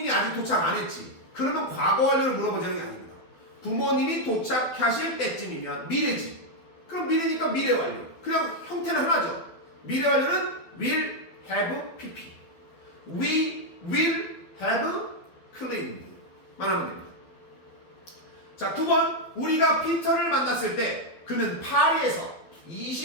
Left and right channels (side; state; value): right; late; 12 ms